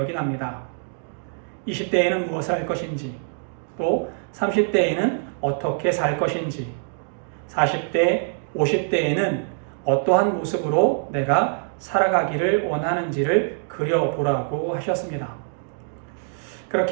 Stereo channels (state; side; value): silent; left; digital silence